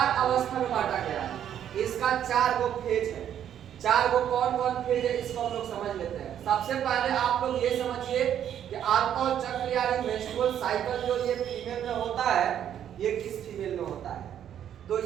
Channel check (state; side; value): quieter; left; 9.9 dB